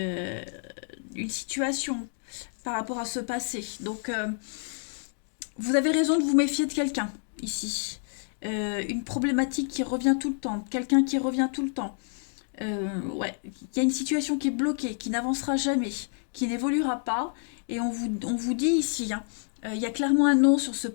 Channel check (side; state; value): right; silent; 59 dB below the other